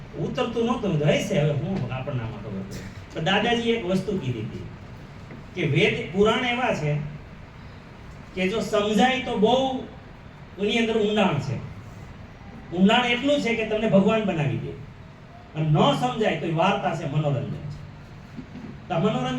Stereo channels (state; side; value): identical; both; correlation 1.00